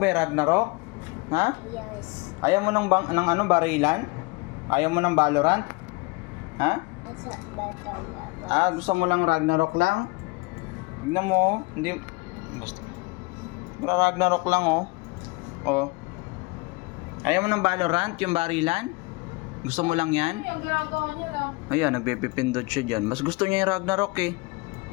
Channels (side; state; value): right; quieter; 26.2 dB